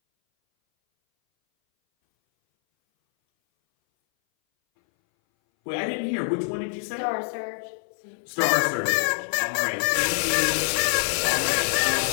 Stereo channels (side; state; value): right; silent; 60 dB below the other